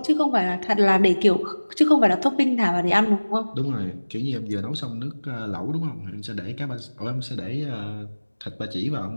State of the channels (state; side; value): inverted; both; correlation -1.00